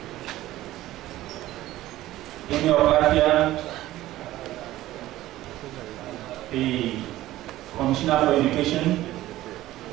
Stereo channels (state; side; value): quieter; left; 15.5 dB